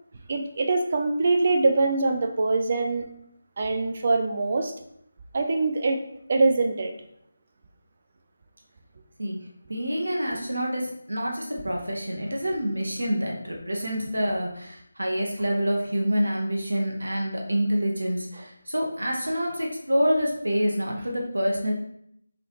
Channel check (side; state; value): both; inverted; correlation -0.92